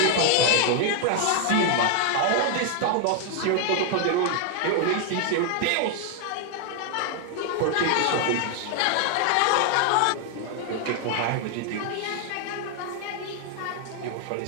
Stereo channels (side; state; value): both; different; correlation 0.00